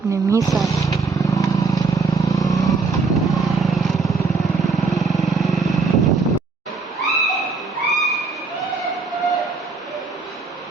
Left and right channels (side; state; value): left; quieter; 4.3 dB